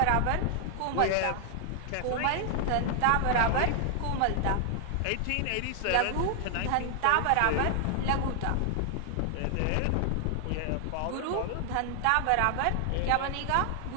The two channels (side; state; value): both; different; correlation 0.00